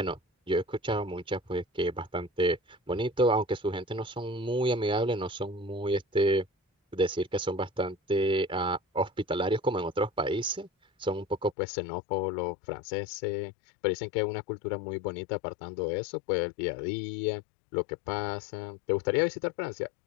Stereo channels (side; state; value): right; drops out; at 11.6 s